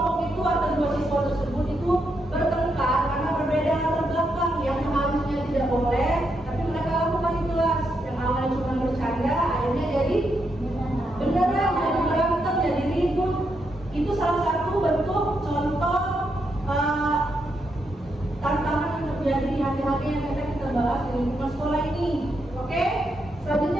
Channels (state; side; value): normal; both; correlation 0.81